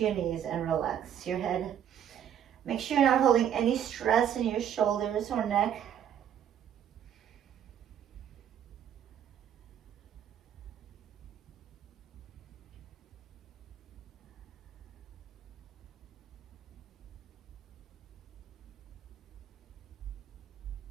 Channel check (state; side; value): quieter; left; 9.5 dB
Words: your knees and relax your head. Make sure you're not holding any stress in your shoulders or neck.